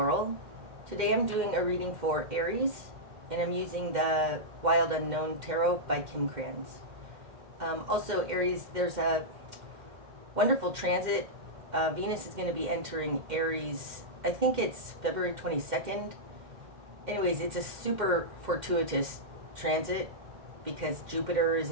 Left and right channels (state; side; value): late; left; 2.1 ms